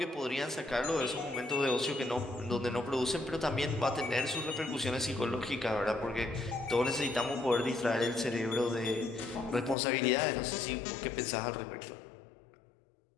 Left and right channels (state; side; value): drops out; right; at 9.8 s